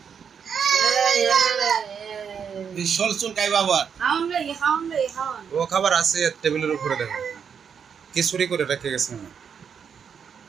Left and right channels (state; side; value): quieter; left; 7.1 dB